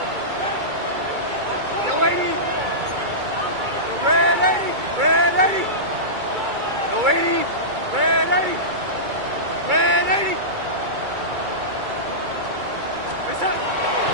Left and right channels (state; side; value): late; left; 2.3 ms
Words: Yo, lady. Red 80. Yo, 80. Red 80.